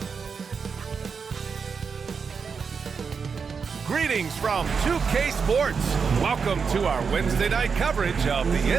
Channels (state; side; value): quieter; left; 5.7 dB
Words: Greetings from 2K Sports. Welcome to our Wednesday night coverage of the